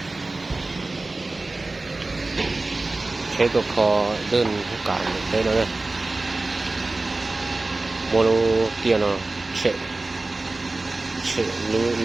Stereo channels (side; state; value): left; quieter; 3.2 dB